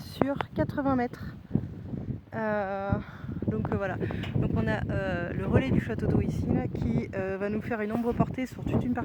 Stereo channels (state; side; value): identical; both; correlation 1.00